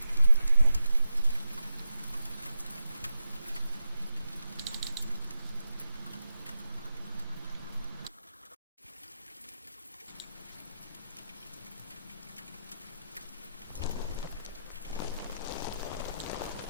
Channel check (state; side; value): inverted; both; correlation -0.87